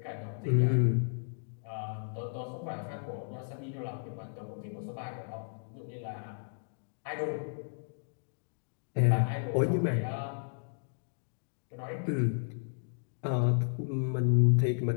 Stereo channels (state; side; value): silent; right; digital silence